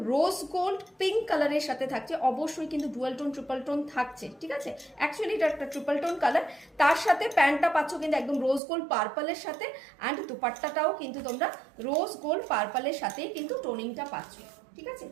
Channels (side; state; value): left; drops out; at 8.6 s